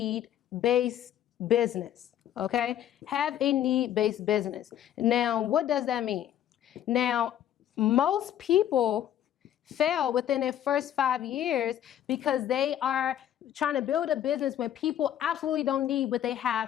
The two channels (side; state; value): right; quieter; 10.9 dB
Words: business, okay? Have a need-based business. Now, what does that mean? Now, most people fail within their first 5 years because they are trying to build a business when people absolutely don't need what they